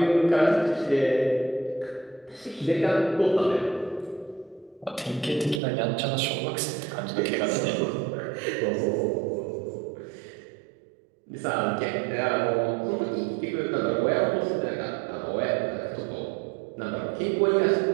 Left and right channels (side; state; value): left; drops out; at 5.6 s